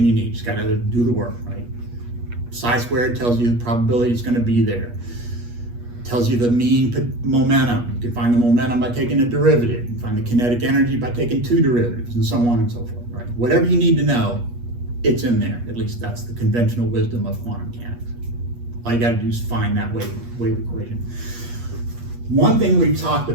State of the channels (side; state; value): left; late; 8.4 ms